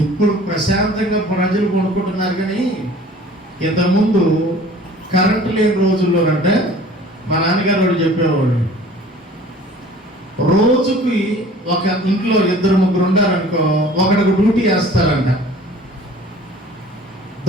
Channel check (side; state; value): both; normal; correlation 0.48